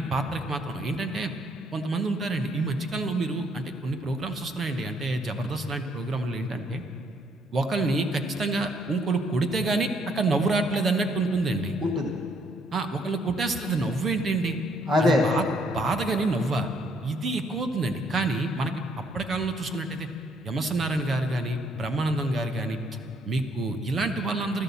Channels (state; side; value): normal; both; correlation 0.68